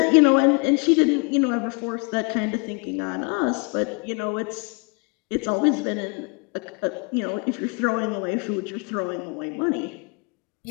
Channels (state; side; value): quieter; right; 32.4 dB